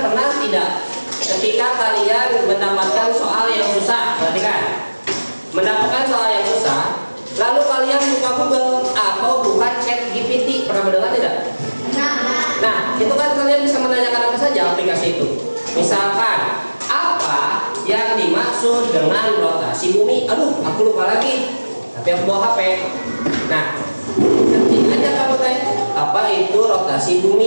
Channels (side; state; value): both; inverted; correlation -1.00